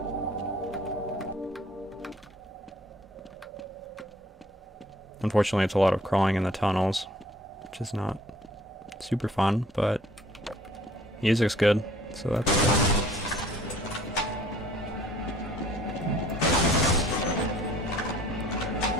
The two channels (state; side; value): normal; both; correlation 0.55